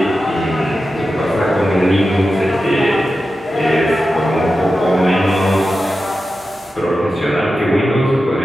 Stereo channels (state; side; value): normal; both; correlation 0.92